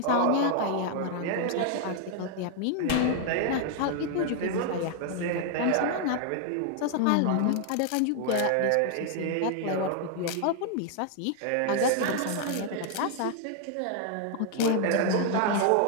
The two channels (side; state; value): both; different; correlation 0.00